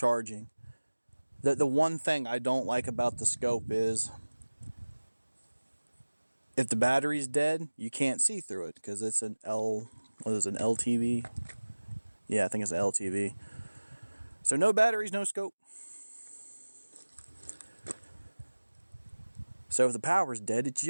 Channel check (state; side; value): inverted; both; correlation -1.00